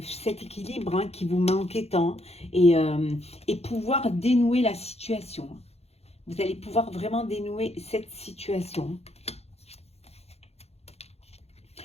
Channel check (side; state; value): right; late; 0.30 ms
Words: cet équilibre qui vous manquait tant et pouvoir dénouer la situation. Vous allez pouvoir vraiment dénouer cette situation.